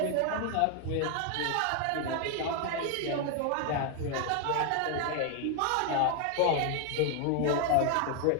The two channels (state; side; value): different; both; correlation 0.00